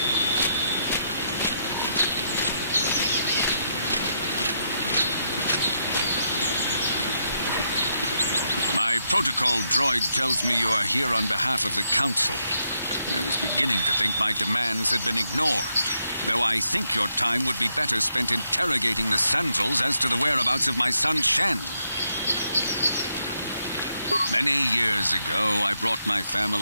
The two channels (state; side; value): inverted; both; correlation -0.79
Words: My protocol droid tells me you are here on behalf of the Council. I was beginning to think my demands had been ignored, though I think your time would be better spent interrogating the Sandals as to the whereabouts of my son Shen. Many years ago, I brought my